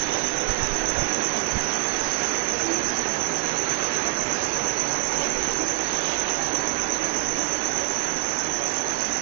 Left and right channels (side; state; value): left; quieter; 24.4 dB